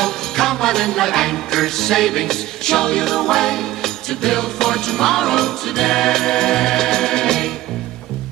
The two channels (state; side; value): quieter; left; 15.8 dB